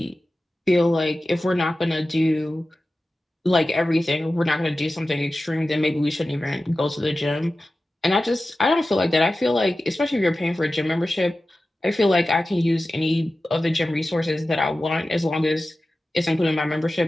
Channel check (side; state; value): both; normal; correlation 0.95